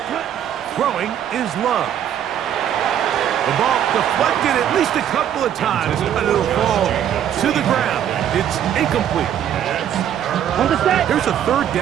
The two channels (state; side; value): quieter; left; 10.0 dB